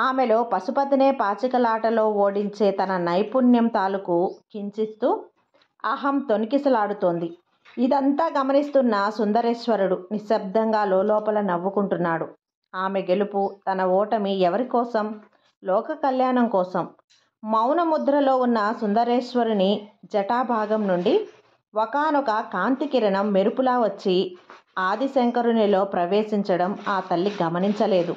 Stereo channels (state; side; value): identical; both; correlation 1.00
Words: పశుపతినే పాచికలాటలో ఓడించే తన నైపుణ్యం తాలూకు కించిస్తూ అహం తొణికిసలాడుతోంది. ఇదంతా గమనిస్తున్న సుందరేశ్వరుడు నిశ్శబ్దంగా లోపల నవ్వుకుంటున్నాడు. ఆమె గెలుపు, తన ఓటమి ఎవరి కోసం? లోక కళ్యాణం కోసం. మౌన ముద్రలో ఉన్న సుందరేశ్వరుని జటాభాగం నుండి ఒకానొక కాంతి కిరణం మెరుపులా వచ్చి ఆదిశంకరునిలో ప్రవేశించడం ఆ తల్లి గమనించలేదు.